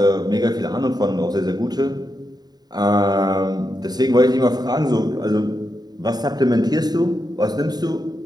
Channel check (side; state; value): left; late; 0.20 ms